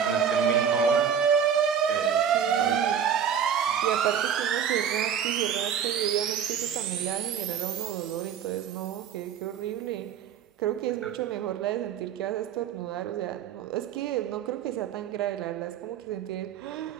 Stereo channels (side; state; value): left; quieter; 8.1 dB